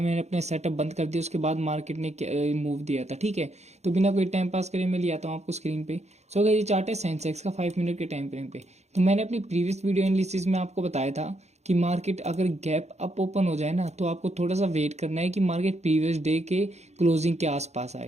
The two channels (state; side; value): late; left; 0.32 ms